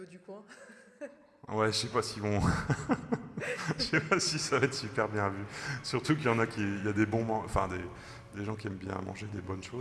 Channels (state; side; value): identical; both; correlation 1.00